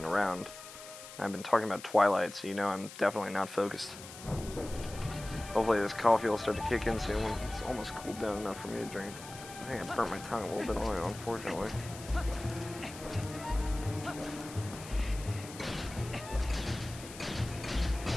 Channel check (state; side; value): noise; left; hiss, 14 dB below the sound